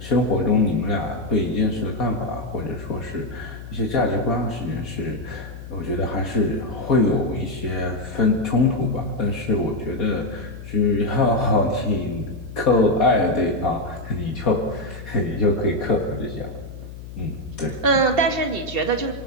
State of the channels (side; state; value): left; noise; hum, 13 dB below the sound